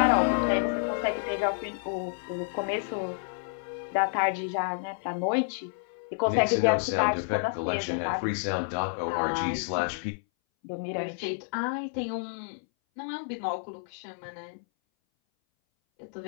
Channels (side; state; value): right; silent; 58 dB below the other